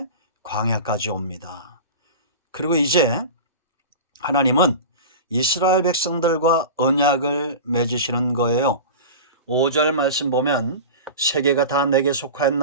광야까지 옵니다. 그리고 이제 하나님은 이스라엘 백성들과 언약을 맺으시는 거예요. 5절 말씀 보면 세계가 다 내게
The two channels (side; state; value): both; inverted; correlation -0.31